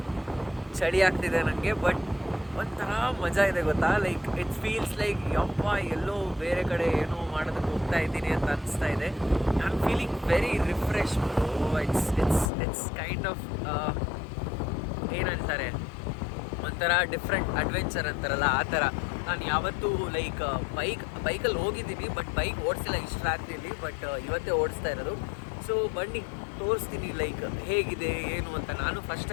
ಚಳಿ ಆಗ್ತಿದೆ ನನಗೆ. ಬಟ್ ಒಂಥರ ಮಜಾ ಇದೆ ಗೊತ್ತಾ. ಲೈಕ್ ಇಟ್ಸ್ ಫೀಲ್ಸ್ ಲೈಕ್ ಯಪ್ಪ ಎಲ್ಲೋ ಬೇರೆ ಕಡೆ ಏನೋ ಮಾಡೋದಕ್ಕೆ ಹೋಗ್ತಾ ಇದ್ದೀನಿ ಅಂತ ಅನಿಸ್ತಾ ಇದೆ. I am feeling very refresh. It's kind of ಏನಂತಾರೆ, ಒಂಥರ ಡಿಫ್ರೆಂಟ್ ಅಡ್ವೆಂಚರ್ ಅಂತಾರಲ್ಲ ಆ ಥರ. ನಾನು ಯಾವತ್ತೂ ಲೈಕ್ ಬೈಕಲ್ಲಿ ಹೋಗಿದ್ದೀನಿ, ಬಟ್ ಬೈಕ್ ಓಡಿಸಿಲ್ಲ ಇಷ್ಟು ರಾತ್ರಿಯಲ್ಲಿ. ಬಟ್ ಇವತ್ತೇ ಓಡಿಸ್ತಾ ಇರೋದು. ಸೊ ಬನ್ನಿ ತೋರಿಸ್ತೀನಿ ಲೈಕ್ ಹೇಗಿದೆ ಏನು ಅಂತ. ನಾನು ಫಸ್ಟ್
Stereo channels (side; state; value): right; drops out; at 12.5 s